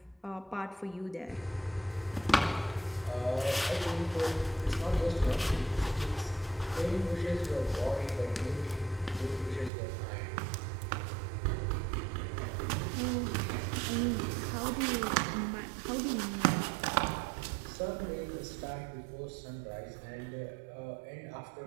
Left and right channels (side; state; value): left; drops out; at 9.7 s